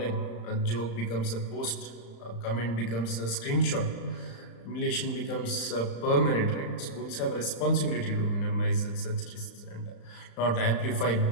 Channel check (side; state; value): right; late; 35 ms